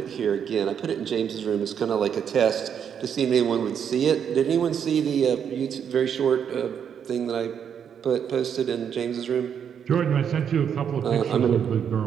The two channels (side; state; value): left; quieter; 8.0 dB